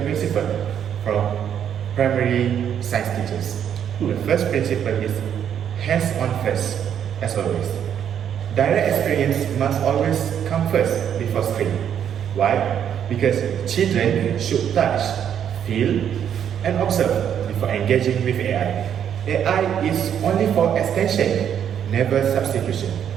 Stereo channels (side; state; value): left; quieter; 9.0 dB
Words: principles from primary science teachers. The first principle is hands-on first, as always. Direct experience must always come first before screen. Why? Because children should touch, feel, and observe before engaging with AI. AI is only for extension, never substitution.